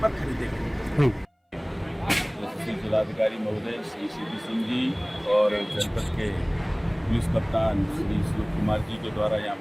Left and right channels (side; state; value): both; identical; correlation 1.00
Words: पर खरीदेंगे। जिलाधिकारी महोदय श्री CP सिंह जी और जनपद के पुलिस कप्तान श्री श्लोक कुमार जी के द्वारा यहाँ